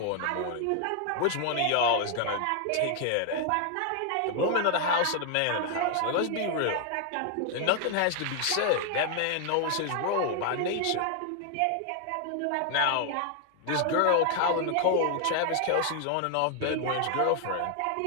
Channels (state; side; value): different; both; correlation 0.00